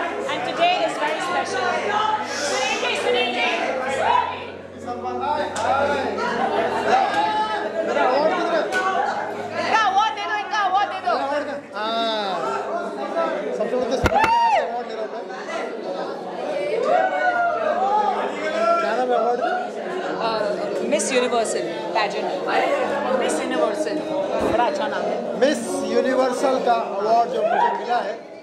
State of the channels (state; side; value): identical; both; correlation 1.00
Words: and today is very special. Sunil Miss Universal pageant. Miss Universal, बड़ा अच्छा नाम है। मिस यूनिवर्सल का अवार्ड जो मुझे मिला है,